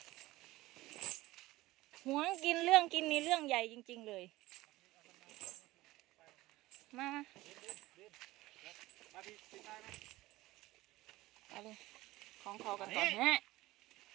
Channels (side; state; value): left; quieter; 18.2 dB